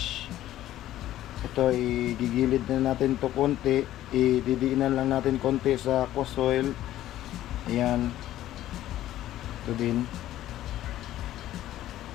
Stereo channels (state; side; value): quieter; right; 13.6 dB